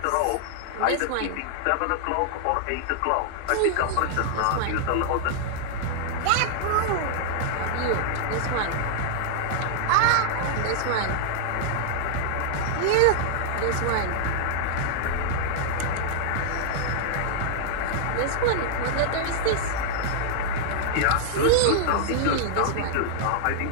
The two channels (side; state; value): both; different; correlation -0.01